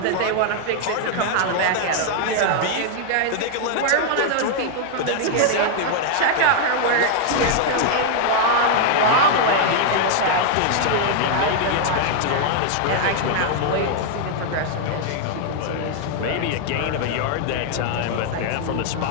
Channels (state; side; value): different; both; correlation -0.01